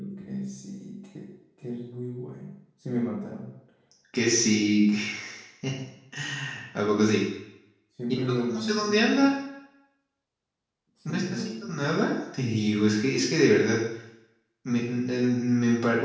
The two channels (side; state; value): both; identical; correlation 1.00